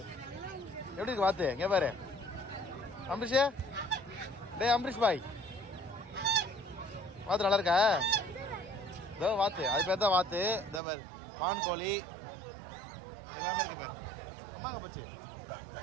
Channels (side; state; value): left; drops out; at 10.8 s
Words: எப்படி இருக்கு வாத்து. இங்க பாரு அம்பரீஷ். டேய் அம்பரீஷ் பாய், வாத்து நல்லா இருக்கா? இதோ வாத்து, அது பேர் தான் வாத்து. இந்த பாரு பான் கோழி எல்லாமே இருக்கு பாரு. அம்மாங்க போச்சு.